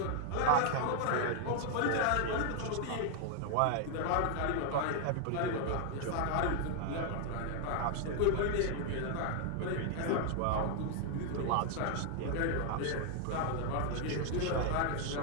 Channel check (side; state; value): both; different; correlation 0.00